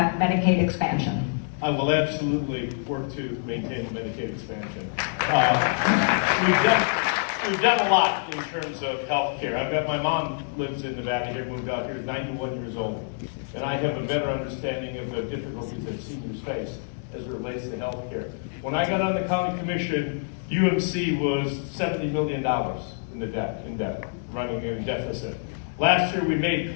Medicaid expansion? I will absolutely work to maintain Medicaid expansion. We've done a lot in terms of health care. I've got my mom lives in Nevada here, moved out here, is 91 years old. And I have a better understanding of the difficulties that seniors face as it relates to health care. When I got on the county commission, UMC was $70 million in debt, running in deficit. Last year, we made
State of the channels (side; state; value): right; silent; digital silence